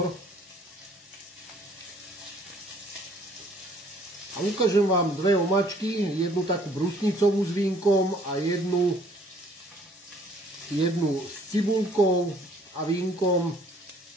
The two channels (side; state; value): both; normal; correlation 0.59